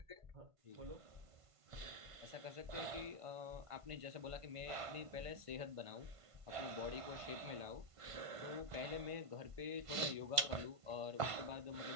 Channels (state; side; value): late; left; 1.5 ms